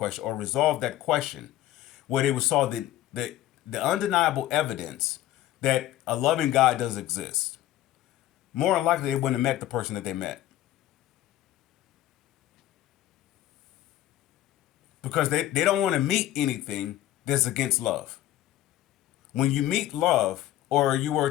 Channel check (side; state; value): right; quieter; 13.7 dB